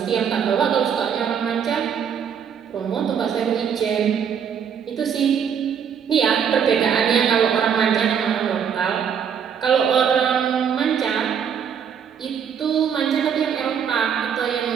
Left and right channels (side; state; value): left; quieter; 7.6 dB